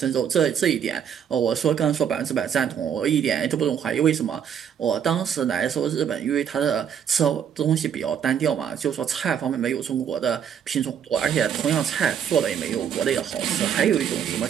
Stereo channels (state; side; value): quieter; left; 8.4 dB